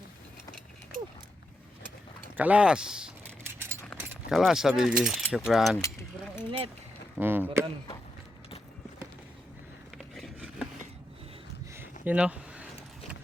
Kalas sa baby, syukran. Sobrang init. Mm. You know.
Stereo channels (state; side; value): normal; both; correlation 0.85